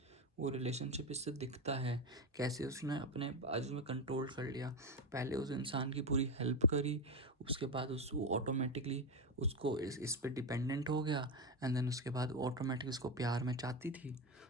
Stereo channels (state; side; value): normal; both; correlation 0.13